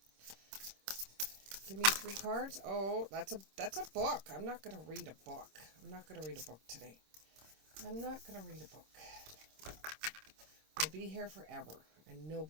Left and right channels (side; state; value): left; late; 26 ms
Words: Give me 3 cards. Oh, that's a book. I'm not going to read a book. I'm not going to read a book today. I'm not going to read a book. We'll be here forever, and